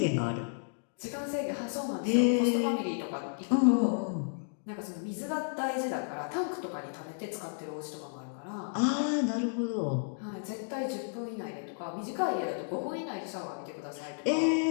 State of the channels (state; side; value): silent; right; digital silence